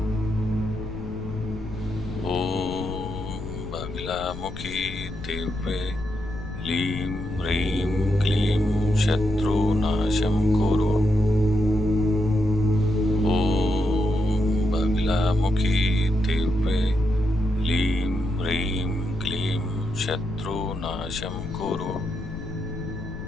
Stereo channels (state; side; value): noise; left; rumble, 10 dB below the sound